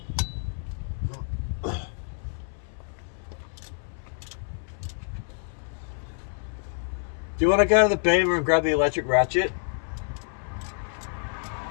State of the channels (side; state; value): right; silent; 60 dB below the other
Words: Do you want to go to the Beamer and grab the electric ratchet?